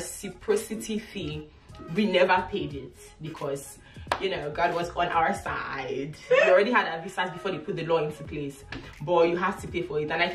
fee. We never paid it because, you know, God was on our side. We already had our visas before they put the law into place, but you have to pay for it. And I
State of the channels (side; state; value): both; identical; correlation 1.00